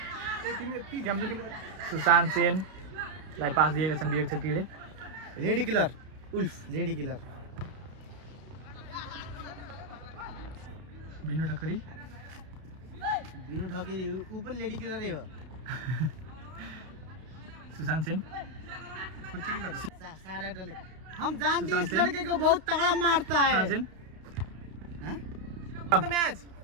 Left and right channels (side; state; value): left; late; 32 ms